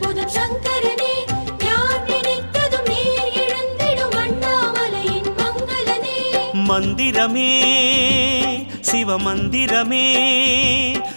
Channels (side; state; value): both; inverted; correlation -1.00